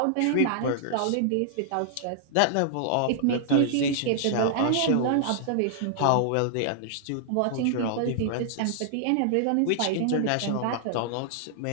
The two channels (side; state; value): both; different; correlation -0.01